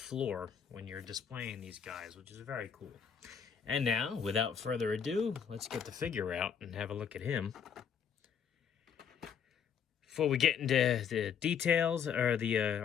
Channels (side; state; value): right; quieter; 7.5 dB